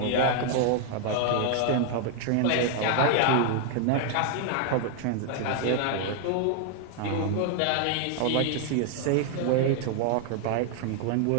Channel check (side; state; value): both; different; correlation 0.00